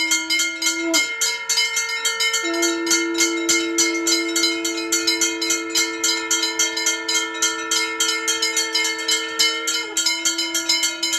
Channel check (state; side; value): identical; both; correlation 1.00